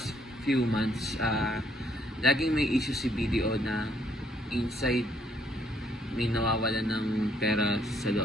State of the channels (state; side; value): normal; both; correlation 0.68